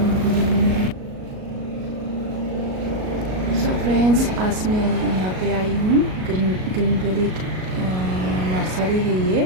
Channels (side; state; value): left; late; 38 ms